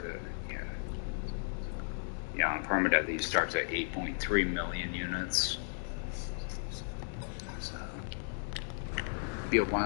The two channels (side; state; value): right; silent; digital silence